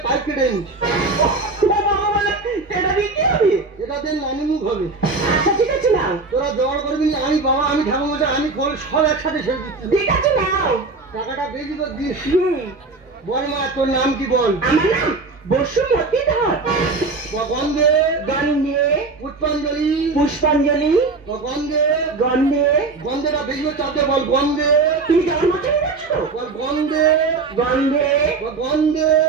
পাইপ কেটে এটা দিয়ে কি হবে এটা দিয়ে নানি মুখ হবে আচ্ছা ঠিক আছে নাও তোরা জোগাড় করবি আমি বাবা আমি ঠাকুর মশাই আমি খোল সব একসাথে ছেড়ে দিচ্ছি ঠিক আছে নাও টাকাটা বেশি করে দিস বল মা তোর নাম কি বল আমার নাম বসুমতী ধর গন্ধে গন্ধে পুষ্পাঞ্জলি পুষ্পাঞ্জলি গন্ধে গন্ধে গন্ধেটা বেশি করে চাপতে বল গন্ধে তুমি যাওয়ার মতো বল গন্ধে গন্ধে গন্ধে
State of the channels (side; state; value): left; quieter; 3.8 dB